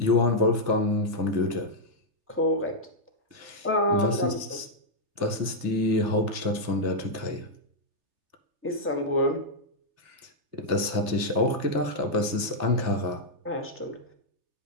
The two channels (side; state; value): left; late; 3.3 ms